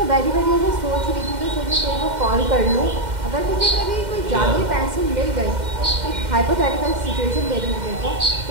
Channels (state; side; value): late; left; 2.1 ms